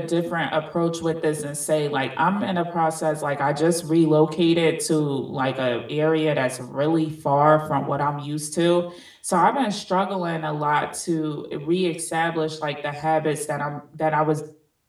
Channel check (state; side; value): identical; both; correlation 1.00